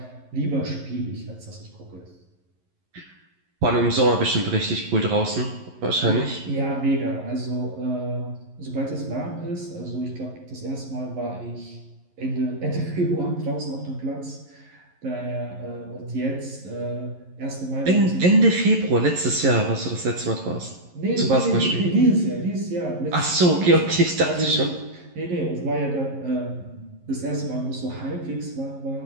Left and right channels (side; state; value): left; late; 11 ms